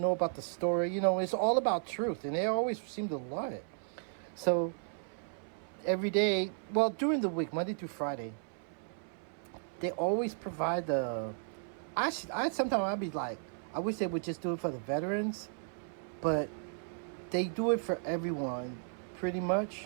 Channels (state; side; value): silent; left; 55 dB below the other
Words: about the story. It's all about truth, and they always seem to love it. So every day, well, during the week, Monday through Friday, they always provide the. I sometimes I'd be like, I wish they would just do it for the veterans, but they do it for everyone, pretty